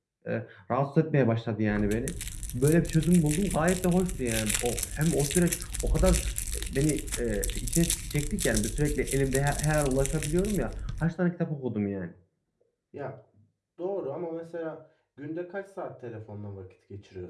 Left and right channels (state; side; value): identical; both; correlation 1.00